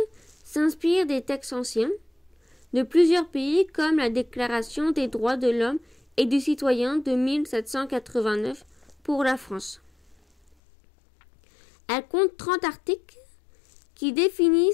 s'inspire des textes anciens de plusieurs pays comme la Déclaration des droits de l'homme et du citoyen de 1789 pour la France. Elle compte 30 articles qui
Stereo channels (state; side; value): drops out; right; at 10.6 s